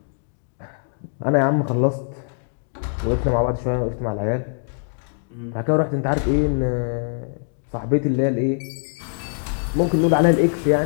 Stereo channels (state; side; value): silent; right; digital silence